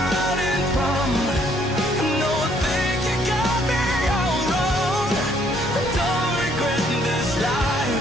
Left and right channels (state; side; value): normal; both; correlation 0.66